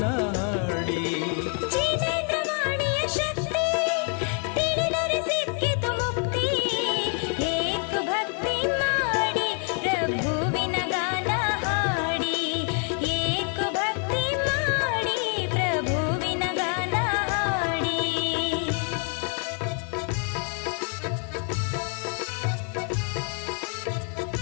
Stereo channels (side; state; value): right; quieter; 39.5 dB